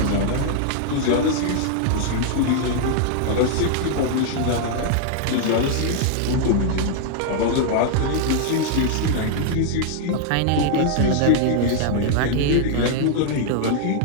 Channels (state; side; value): different; both; correlation 0.00